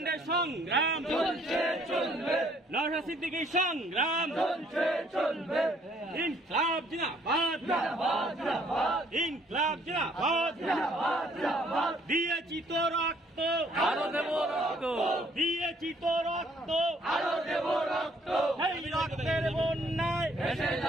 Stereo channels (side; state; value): both; normal; correlation 0.63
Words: সংগ্রাম নওশাদ সিদ্দিকীর সংগ্রাম ইনকলাব জিন্দাবাদ, ইনকলাব জিন্দাবাদ। দিয়েছি তো রক্ত, আরো দেব রক্ত, দিয়েছি তো রক্ত, আরো দেব রক্ত। সেই রক্তের বন্যায় ভেসে